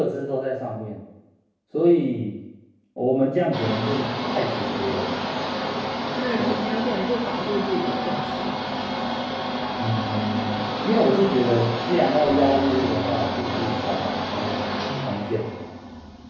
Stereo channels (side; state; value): both; identical; correlation 1.00